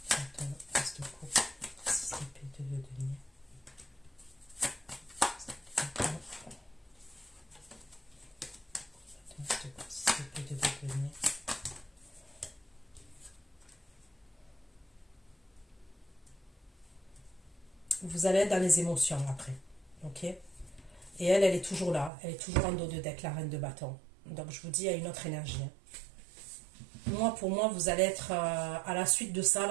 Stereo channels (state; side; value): drops out; left; at 22.1 s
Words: 5 de bâton, as de coupe, 6 d'épée, 2 de denier. 5 de bâton, as de coupe, 6 d'épée, 2 de denier. Vous allez être dans les émotions après, ok? Et elle est toujours là, elle est toujours en dos de deck, la reine de bâton. Donc je vous dis, il y a une autre énergie. Moi, pour moi, vous allez être à la suite de ça,